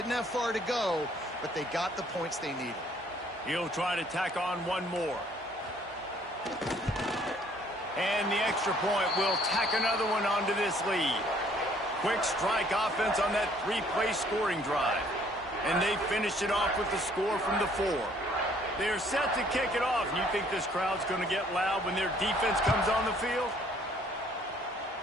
have far to go, but they got the points they needed. He'll try to tack on one more. And the extra point will tack another one onto this lead. Quick strike offense on that 3-play scoring drive. And they finished it off with the score from the 4. They're set to kick it off. And you think this crowd's going to get loud when their defense comes on the field?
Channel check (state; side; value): normal; both; correlation 0.61